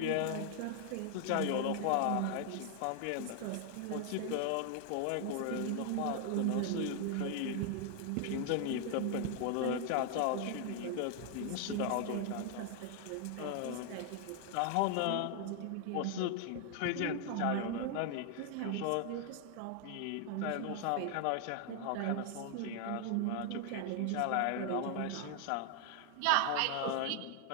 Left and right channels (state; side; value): different; both; correlation 0.00